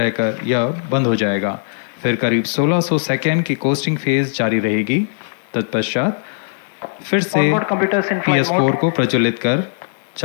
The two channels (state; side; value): silent; right; digital silence